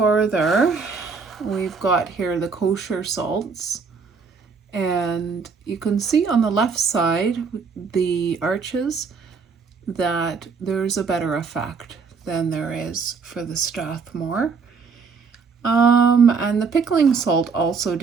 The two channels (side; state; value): left; quieter; 5.2 dB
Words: we've got here the kosher salts. And you can see on the left side, the Arches, that there's a better effect than there is for the Strathmore. And the pickling salt also